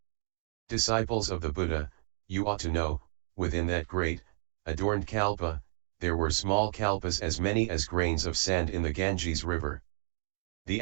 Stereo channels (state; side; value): silent; left; 57 dB below the other